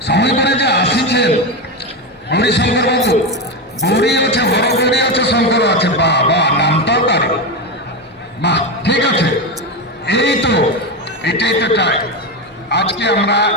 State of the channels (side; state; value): both; normal; correlation 0.14